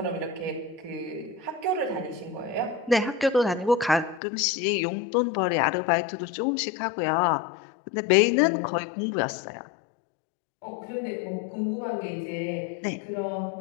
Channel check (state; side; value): drops out; right; at 4.2 s